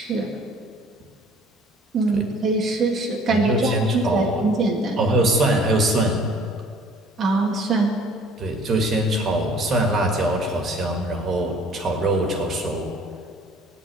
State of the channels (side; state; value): both; normal; correlation 0.53